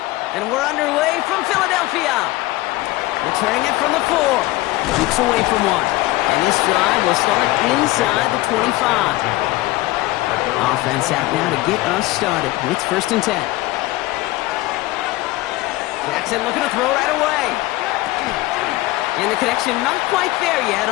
And we're underway from Philadelphia. Returning it from the 4. Keeps away from 1. And this drive will start inside the 25. Offense out now to get us started. It's 1st and 10. Jackson looking to throw right away. And the connection not quite there yet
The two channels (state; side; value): quieter; right; 18.7 dB